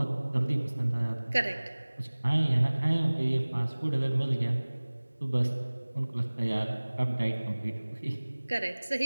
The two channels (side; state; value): both; inverted; correlation -1.00